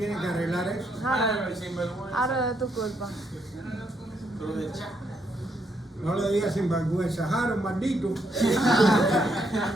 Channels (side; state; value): both; normal; correlation 0.76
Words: que arreglar eso. Harold, sinvergüenza. Ahora es tu culpa. Cruz de cha. No le digas sinvergüenza. Harold, maldito.